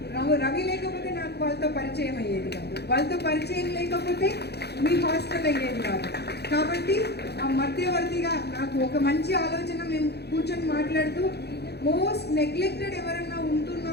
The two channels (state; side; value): late; right; 0.48 ms